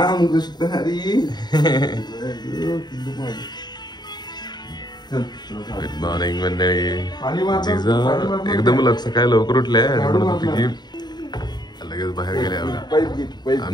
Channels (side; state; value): right; late; 0.20 ms